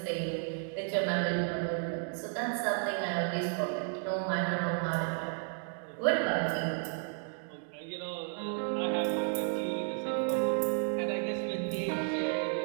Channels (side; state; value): left; silent; 56 dB below the other